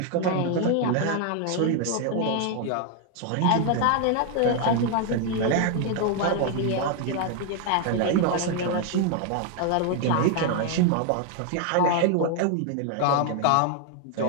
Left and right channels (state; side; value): different; both; correlation 0.01